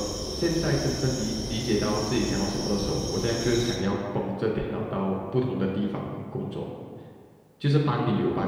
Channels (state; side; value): identical; both; correlation 1.00